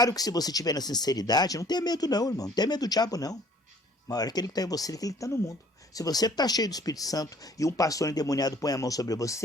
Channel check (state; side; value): normal; both; correlation 0.56